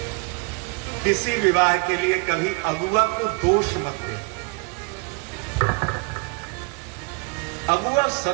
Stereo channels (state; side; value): quieter; left; 32.0 dB